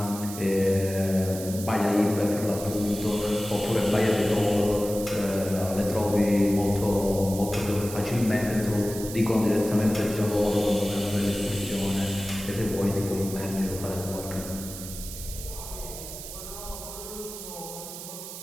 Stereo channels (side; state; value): right; noise; hiss, 11 dB below the sound